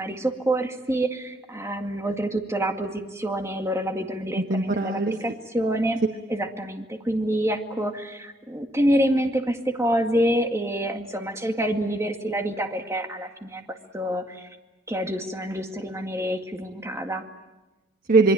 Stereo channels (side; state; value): both; normal; correlation 0.68